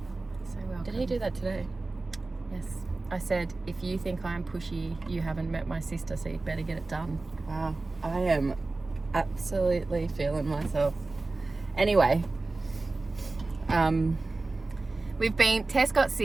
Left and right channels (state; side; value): quieter; left; 3.3 dB